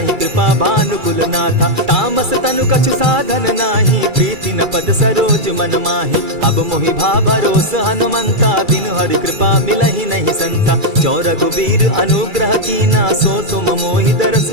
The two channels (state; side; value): late; left; 2.3 ms